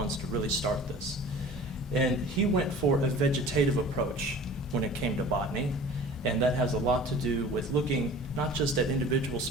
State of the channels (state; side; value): normal; both; correlation 0.43